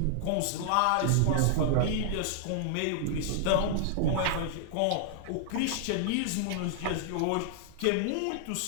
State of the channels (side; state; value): both; different; correlation -0.01